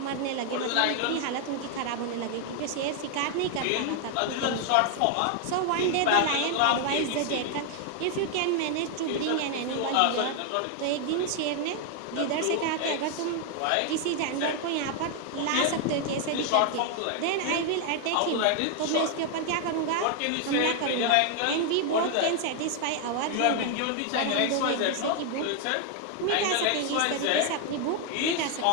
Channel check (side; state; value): both; different; correlation 0.00